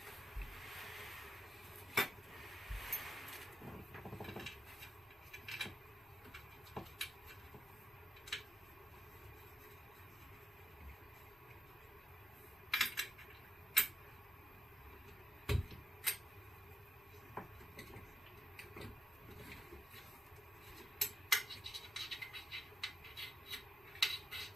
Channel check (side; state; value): both; normal; correlation 0.84